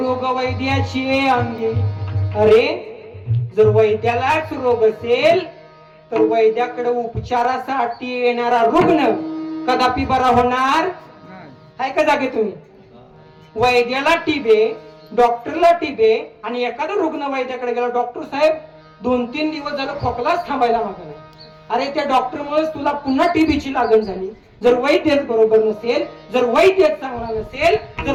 वैद्याची अंगी. अरे जर वैद्यालाच रोग असेल तर वैद्याकडे उपचारासाठी येणारा रुग्ण कदापि बरा होणार आहे का? जागे तुम्ही वैद्याला टिबे, डॉक्टरला टिबे, आणि एखादा रुग्ण वैद्याकडे गेला, डॉक्टर साहेब 2-3 दिवस झालं खोकलाच थांबायला मागला. अरे त्या डॉक्टरमुळे तुला पुन्हा टीबीची लागण झाली. जर वैद्यच बरोबर नसेल, जर वैद्यच चांगला नसेल, जर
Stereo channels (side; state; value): both; identical; correlation 1.00